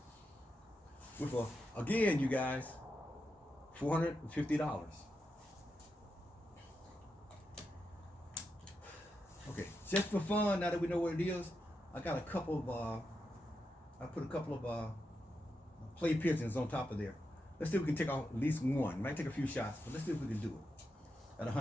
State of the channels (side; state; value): both; normal; correlation 0.86